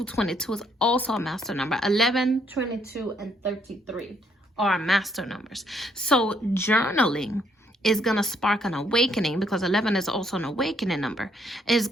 22 is also a master number. 11, 22, and 33 are master numbers. So journaling is going to spark an awakening, because 11 is also an awakening number. It's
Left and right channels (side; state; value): both; normal; correlation 0.70